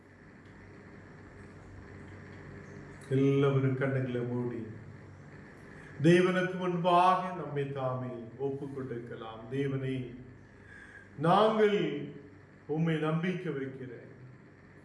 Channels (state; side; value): identical; both; correlation 1.00